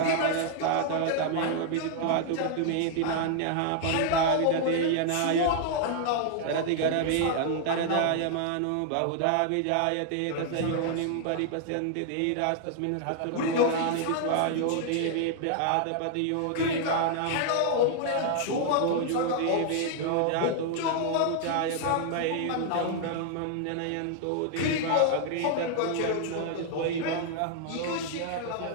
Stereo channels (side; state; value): both; different; correlation 0.00